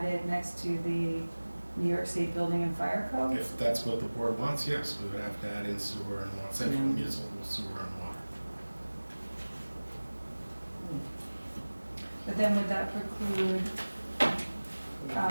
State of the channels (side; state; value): both; inverted; correlation -1.00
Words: next to the New York State Building and Fire Code? If that's what the board wants, yes, we would have to add in sewer and water, central municipal sewer and water. But then would that preclude,